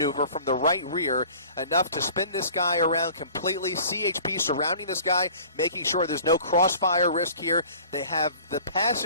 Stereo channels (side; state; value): both; inverted; correlation -0.47